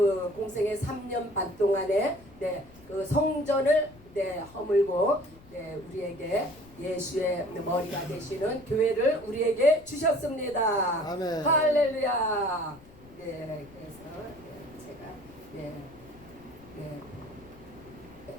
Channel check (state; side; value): noise; left; rumble, 23 dB below the sound